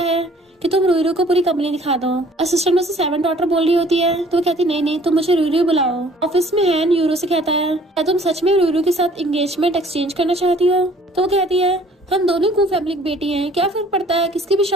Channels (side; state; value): both; normal; correlation 0.55